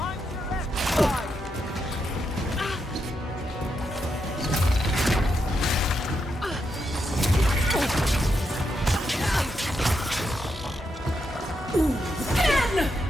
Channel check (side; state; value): both; normal; correlation 0.83